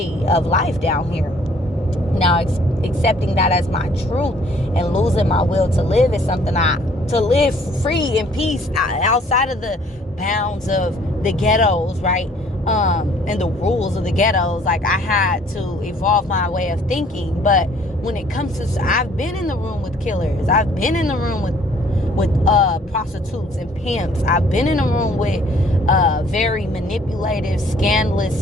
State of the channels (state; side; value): normal; both; correlation 0.59